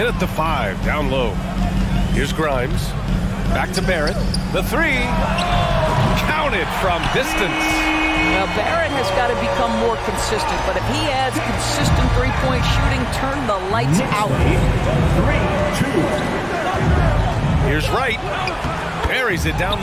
at the 5, down low. Here's Grimes. Back to Barrett. The 3. Counted from distance. Now, Barrett has got to become more consistent, but if he adds consistent three-point shooting, turn the lights out. 3-2. Here's Wright. Buries it down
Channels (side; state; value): both; identical; correlation 1.00